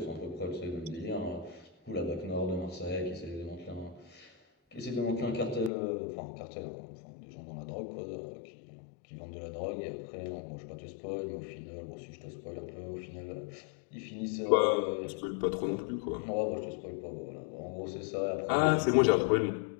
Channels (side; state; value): right; drops out; at 5.7 s